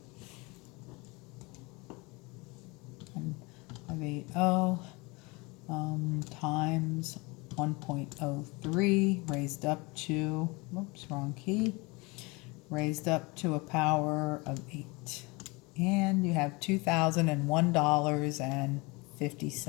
And 580 times 1.03 raised up to, oops, wrong key, raised up to a power of 8. And you have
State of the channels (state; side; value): quieter; right; 26.1 dB